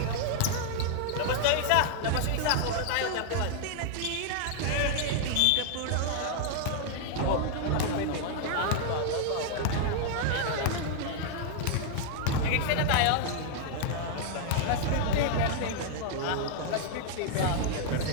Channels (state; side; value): different; both; correlation 0.00